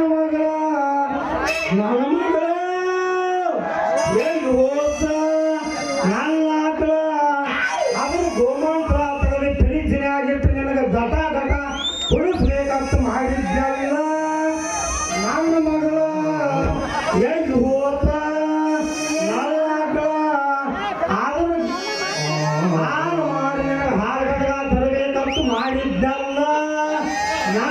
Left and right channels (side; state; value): both; identical; correlation 1.00